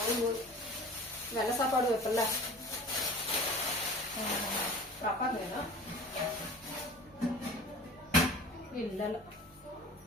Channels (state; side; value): normal; both; correlation 0.40